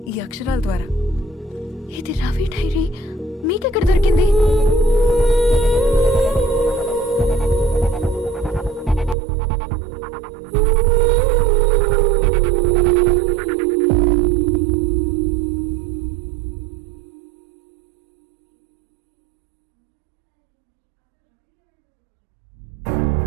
ఈ అక్షరాల ద్వారా. ఇది రవి డైరీ మీకెక్కడ దొరికింది? Please come. ఈ డైరీ ముంబైకి ఎలా వెళ్ళింది? అసలు రవికి ఏమైందో చెప్పండి.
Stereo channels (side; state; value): left; drops out; at 9.2 s